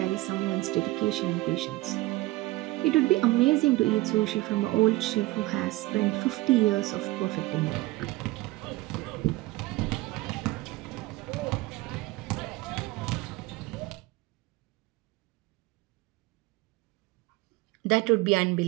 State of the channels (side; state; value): left; quieter; 19.8 dB